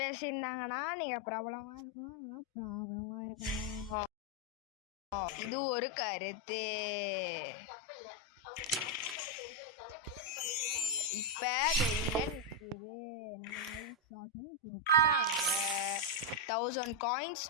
நீங்க ப்ராப்ளமா இருக்கும். இது ஒரு கருத்து. இப்ப வெளியில நிக்குது. 1000 காயின்ஸ்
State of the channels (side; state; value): both; normal; correlation 0.01